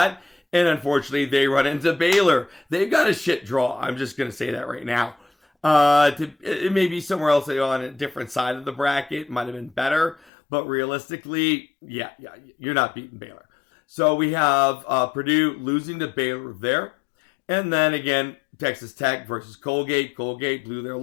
and unfortunately, they run into Baylor. They've got a shit draw. I'm just going to say that right now. It may be somewhere else on a different side of the bracket. Might have been better, but realistically, yeah, you're not beating Baylor. So we have Purdue losing to Baylor there. And then again, Texas Tech versus Colgate. Colgate blew their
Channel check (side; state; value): right; drops out; at 10.3 s